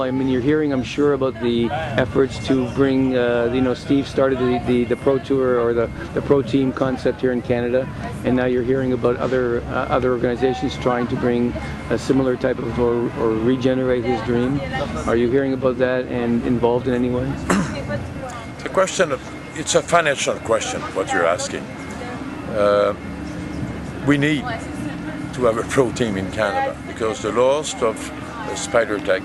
You're hearing, I'm sure, about the efforts to bring, Steve started the Pro Tour or the Pro Team concept here in Canada, and now you're hearing about other organizations trying to bring a similar type of, or regenerate his dream. Are you hearing about that and involved in any way? The question, it's a financial question, what you're asking. We need to have a pro team in Canada, because the loss of Spider Tech,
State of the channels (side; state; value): both; identical; correlation 1.00